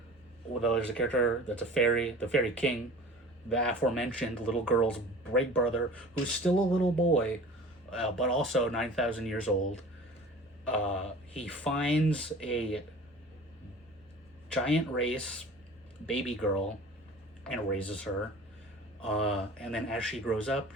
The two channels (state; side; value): normal; both; correlation 0.42